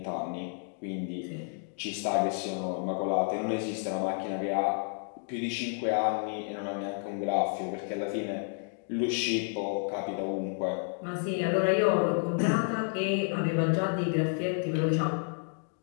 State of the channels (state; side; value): silent; right; 57 dB below the other